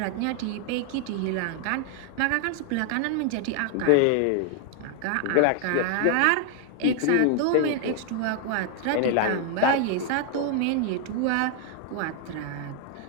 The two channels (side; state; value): both; different; correlation 0.00